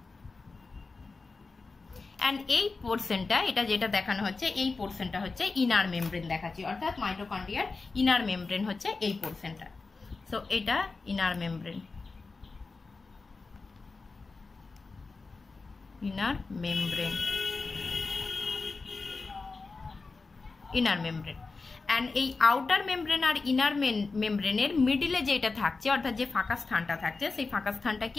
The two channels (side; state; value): right; quieter; 4.0 dB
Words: অ্যান্ড এই পোর্শনটা, এটা যেটা দেখানো হচ্ছে এই পোর্শনটা হচ্ছে ইনার মেমব্রেন দেখাচ্ছি, অর্থাৎ মাইটোকন্ড্রিয়ার ইনার মেমব্রেন হচ্ছে এই পোর্শনটা। সো এটা inner membrane, inner membrane, inner membrane. And এই আউটার মেমব্রেন আর ইনার মেমব্রেনের মিডিলে যেটা থাকছে, অর্থাৎ যে ফাঁকা স্থানটা থাকছে, সেই ফাঁকা স্থানটা